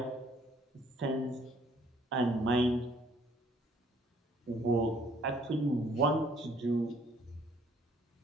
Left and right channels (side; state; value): both; normal; correlation 0.62